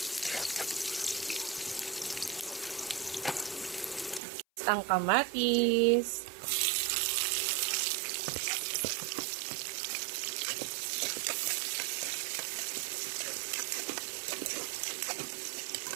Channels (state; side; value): drops out; left; at 4.2 s